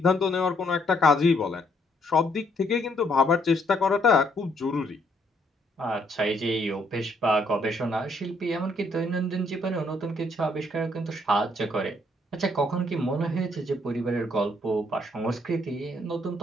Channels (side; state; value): both; normal; correlation 0.69